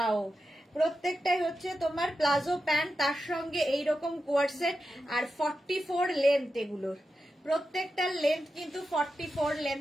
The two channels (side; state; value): both; normal; correlation 0.89